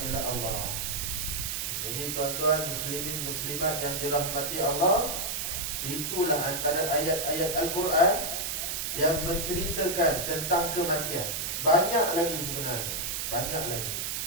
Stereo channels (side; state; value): right; noise; hiss, 2 dB below the sound